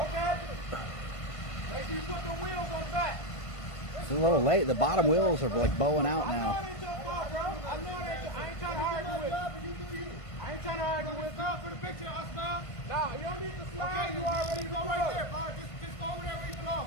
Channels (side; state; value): right; late; 1.5 ms